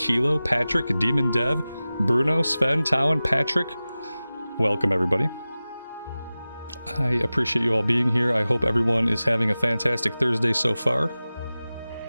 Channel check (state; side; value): inverted; both; correlation -0.96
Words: Patrick, Demon Dev, Bruno, Sven, Towan, Patrick. Welcome everybody. I appreciate you all being here. I hope everyone is having a fantastic Thursday so far.